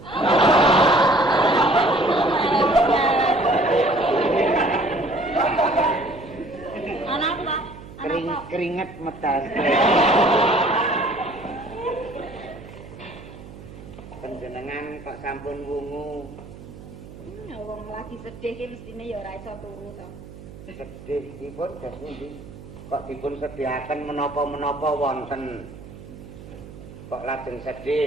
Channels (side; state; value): right; noise; hum, 16 dB below the sound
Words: Anak Pak. Keringet metas. Panjenengan kok sampun wungu. Ya wong lagi sedih ki mestine ya ora iso turu to. Sedih dipun gas pundi? Kok dipun sediaken menapa-menapa wonten. Kok lajeng